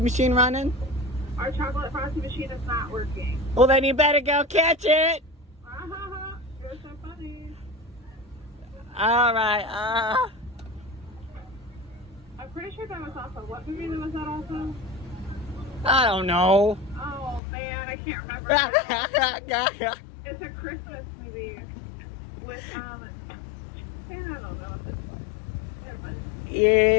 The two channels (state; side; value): drops out; right; at 17.4 s